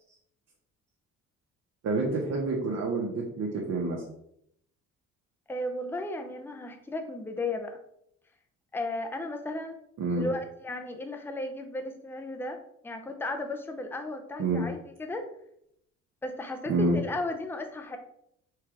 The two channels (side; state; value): both; normal; correlation 0.42